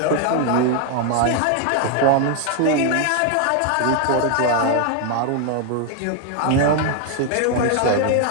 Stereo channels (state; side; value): different; both; correlation 0.01